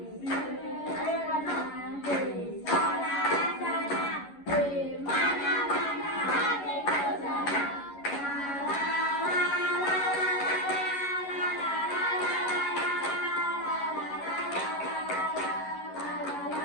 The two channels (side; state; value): right; late; 11 ms